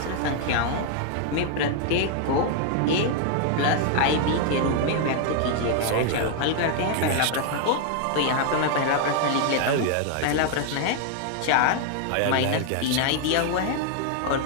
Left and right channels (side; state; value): both; different; correlation 0.00